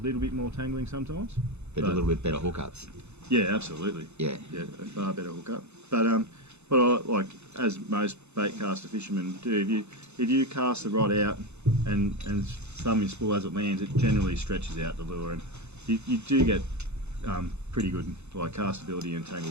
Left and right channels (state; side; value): late; left; 0.81 ms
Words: bit more tangling sometimes. But a little bit better hookups. Yeah, absolutely. Yeah. Yeah, a far better hookup. But what I like, as most bait caster fishermen do, if you cast the rod out and thumb your spool as it lands, it generally stretches out the lure, and you do get pretty good like castability and